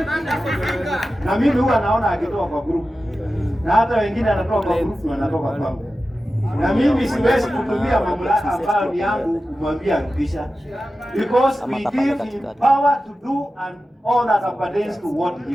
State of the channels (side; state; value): both; normal; correlation 0.93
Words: Na mimi huwa naona akitoa kwa group. Na hata wengine anatoa kwa group na anatoka kwangu. Na mimi siwezi kutumia mamlaka ambayo ni yangu kumwambia rudisha. Because we give him power to do and all that appertains to what he